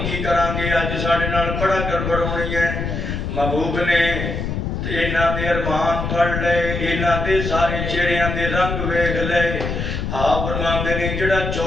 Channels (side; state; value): left; noise; rumble, 3 dB below the sound